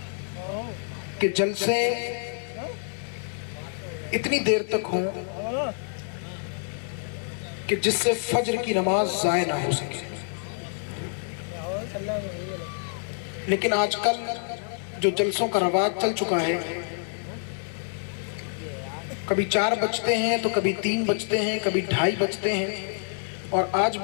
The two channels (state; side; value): silent; right; digital silence